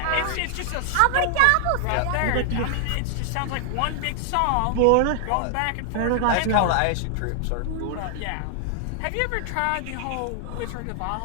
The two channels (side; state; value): both; different; correlation 0.00